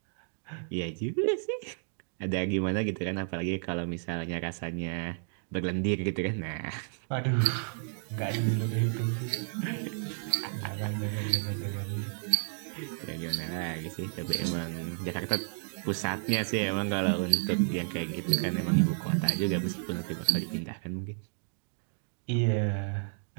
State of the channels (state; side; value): silent; left; digital silence